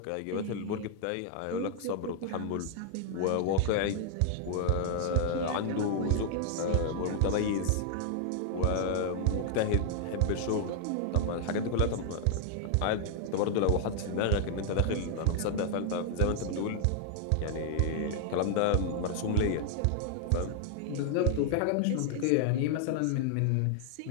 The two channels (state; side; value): different; both; correlation -0.01